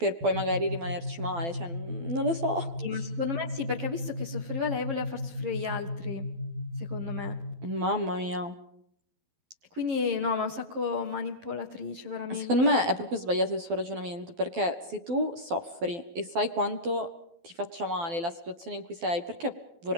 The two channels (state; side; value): late; left; 12 ms